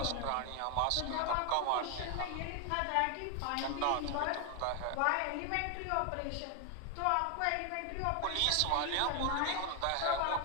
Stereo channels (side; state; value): both; different; correlation 0.01